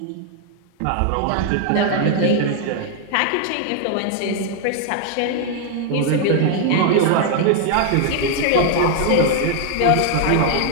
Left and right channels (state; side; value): different; both; correlation 0.00